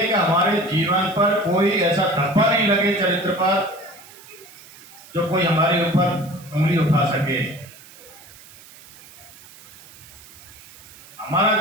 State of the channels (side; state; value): right; noise; hiss, 21 dB below the sound